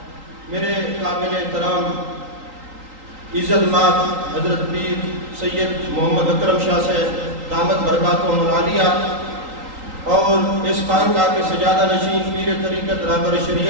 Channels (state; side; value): late; left; 3.8 ms